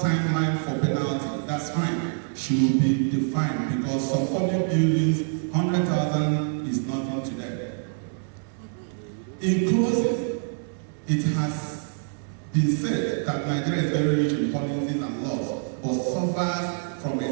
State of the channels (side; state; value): left; silent; 61 dB below the other